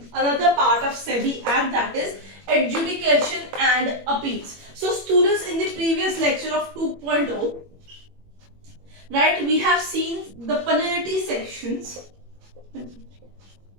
another part of SEBI act, that is adjudication and appeals. So students, in the previous lecture of 2.0, right, we have seen the penalty sections.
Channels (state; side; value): late; left; 21 ms